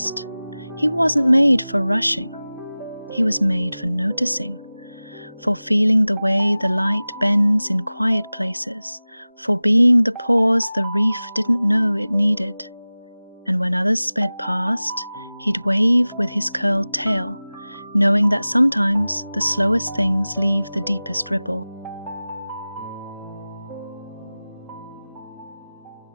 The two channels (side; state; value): both; inverted; correlation -0.98